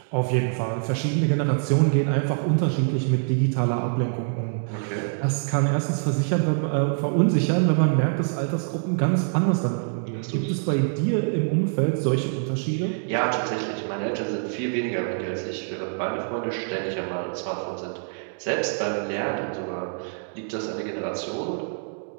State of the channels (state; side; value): silent; left; 60 dB below the other